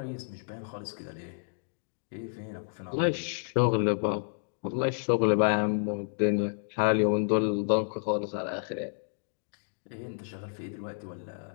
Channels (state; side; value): silent; right; digital silence